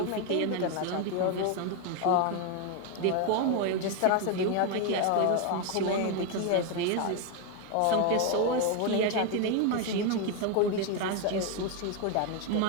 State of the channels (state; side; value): different; both; correlation 0.01